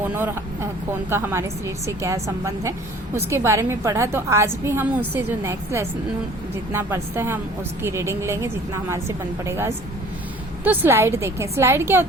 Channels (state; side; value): normal; both; correlation 0.50